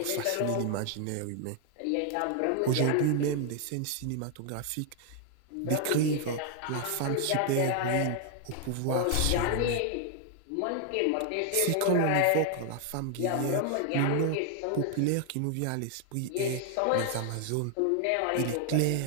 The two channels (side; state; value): both; different; correlation 0.00